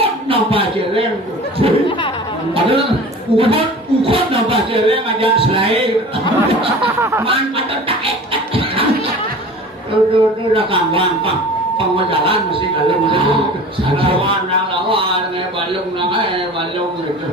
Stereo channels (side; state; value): both; normal; correlation 0.39